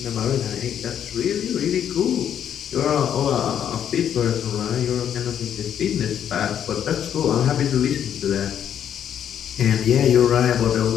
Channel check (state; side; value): quieter; right; 9.4 dB